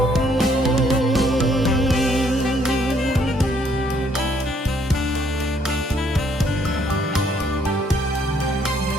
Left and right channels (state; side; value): normal; both; correlation 0.67